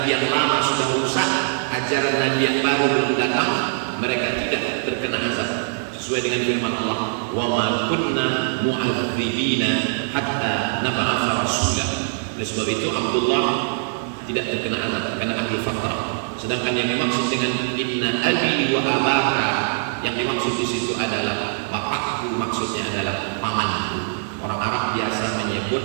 yang lama sudah rusak, ajaran Nabi yang baru belum datang, mereka tidak terkena azab. Sesuai dengan firman Allah, wa ma kunna mu'adzibina hatta nab'atsa rasula. Oleh sebab itu Abdullah tidak terkena azab karena ahli fatrah. Sedangkan yang dimaksud dengan inna abi wa abaka, yang dimaksud di situ adalah bapakku, maksudnya adalah pamanku. Orang Arab biasa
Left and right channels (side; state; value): left; silent; 64 dB below the other